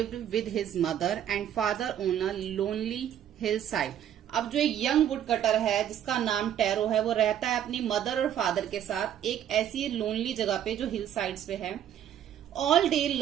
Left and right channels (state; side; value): quieter; left; 10.2 dB